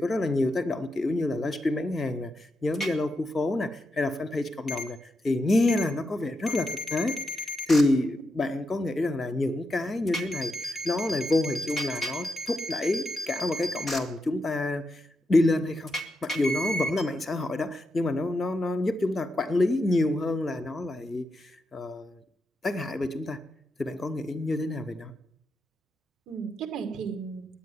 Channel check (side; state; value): both; normal; correlation 0.85